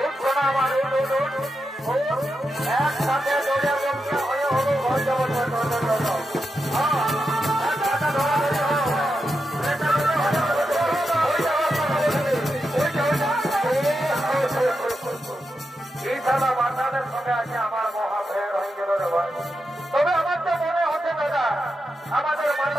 উঠ শোনা আমার, উঠ উঠ উঠ উঠ, একসাথে দৌড়ে বলছে হয়ে হলো ঘর যাবো। এই সালা বাচ্চাদের সঙ্গে আছে আমার মহা ভেড় হয়ে গেল রে ভাই। তবে আমার তো মনে হচ্ছে দাদা আমাদের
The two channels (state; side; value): normal; both; correlation 0.87